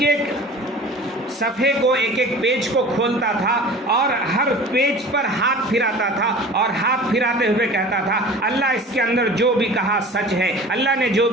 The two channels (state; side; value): normal; both; correlation 0.40